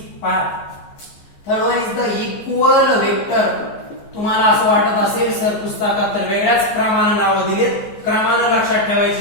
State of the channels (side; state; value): right; late; 14 ms